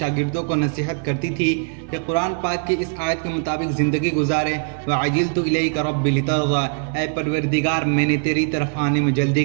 کو نصیحت کرتی تھی کہ قرآن پاک کی اس آیت کے مطابق زندگی گزارے۔ وَعَجِلْتُ إِلَيْكَ رَبِّ لِتَرْضَىٰ، اے پروردگار میں نے تیری طرف آنے میں جلدی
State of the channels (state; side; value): quieter; left; 39.4 dB